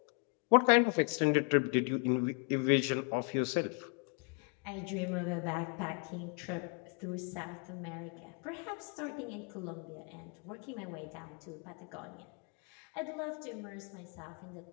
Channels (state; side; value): quieter; right; 39.0 dB